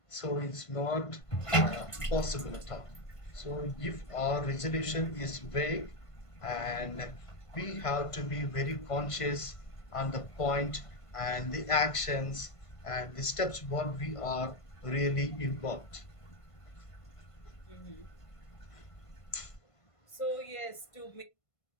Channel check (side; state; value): right; late; 1.5 ms